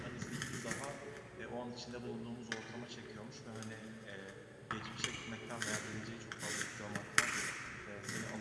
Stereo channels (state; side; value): identical; both; correlation 1.00